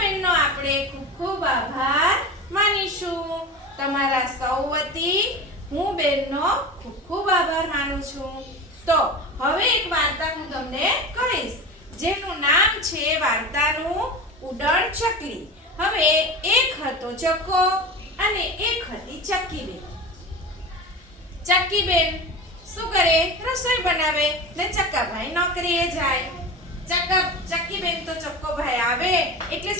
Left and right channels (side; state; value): both; normal; correlation 0.29